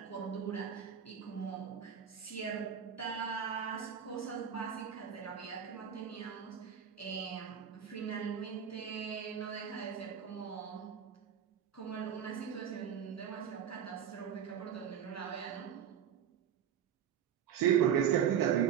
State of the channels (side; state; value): left; quieter; 8.6 dB